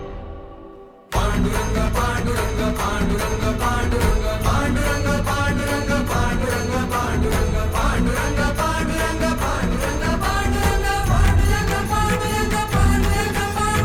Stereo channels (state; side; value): identical; both; correlation 1.00